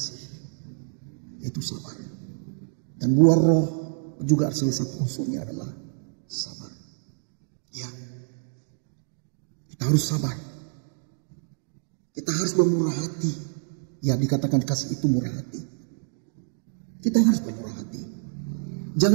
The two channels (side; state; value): left; silent; digital silence